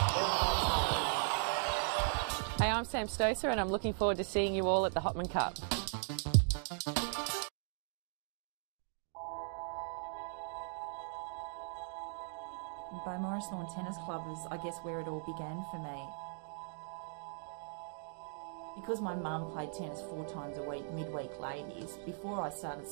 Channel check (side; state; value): left; silent; digital silence